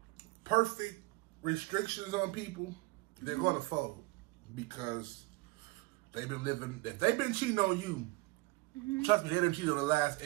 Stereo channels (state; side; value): quieter; left; 23.3 dB